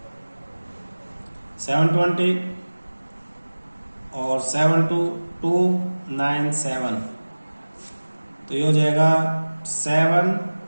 720 और 7 2 297, तो ये हो जाएगा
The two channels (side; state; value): both; inverted; correlation -1.00